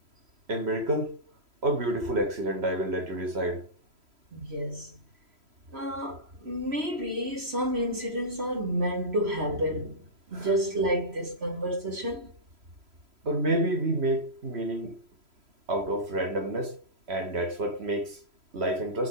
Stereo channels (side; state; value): left; late; 3.0 ms